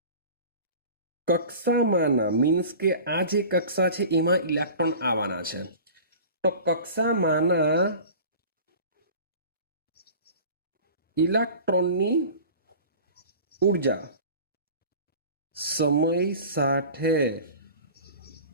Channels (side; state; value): both; inverted; correlation -0.40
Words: કક્ષામાંના મીન્સ કે આ જે કક્ષા છે એમાં ઇલેક્ટ્રોન આવવાના છે. તો કક્ષામાંના ઇલેક્ટ્રોનની ઉર્જા સમય સાથે